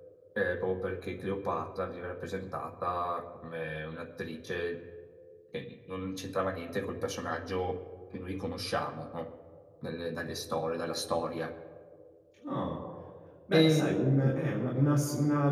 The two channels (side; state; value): both; identical; correlation 1.00